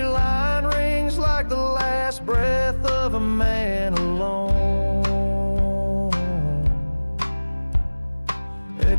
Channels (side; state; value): both; inverted; correlation -1.00